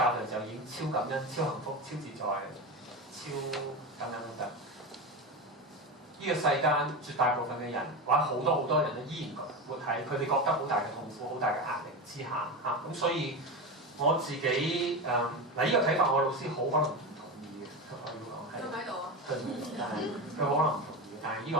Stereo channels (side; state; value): both; normal; correlation 0.21